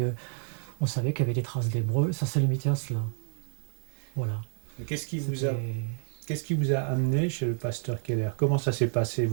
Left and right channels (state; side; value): silent; left; 58 dB below the other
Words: on savait qu'il y avait des traces d'hébreu. Ça s'est limité à cela. Voilà. Et C'était qu'est-ce qui vous a amené chez le pasteur Keller? Comment ça s'est passé?